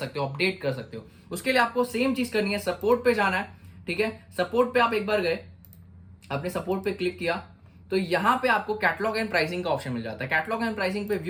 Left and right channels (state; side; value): identical; both; correlation 1.00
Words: हो, अपडेट कर सकते हो। उसके लिए आपको सेम चीज करनी है, सपोर्ट पे जाना है, ठीक है। सपोर्ट पे आप एक बार गए, आपने सपोर्ट पे क्लिक किया तो यहां पे आपको कैटलॉग एंड प्राइसिंग का ऑप्शन मिल जाता है। कैटलॉग एंड प्राइसिंग पे